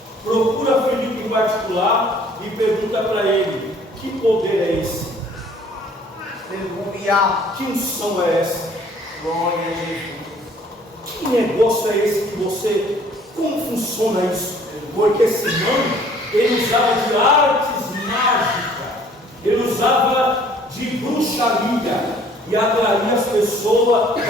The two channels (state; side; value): normal; both; correlation 0.56